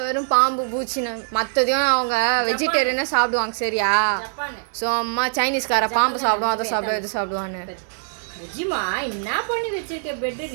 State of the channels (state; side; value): silent; left; digital silence